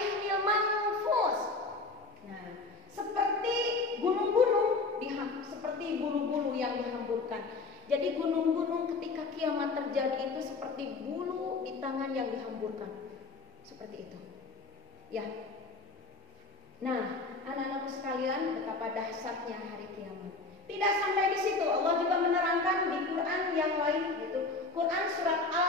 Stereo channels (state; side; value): quieter; right; 3.6 dB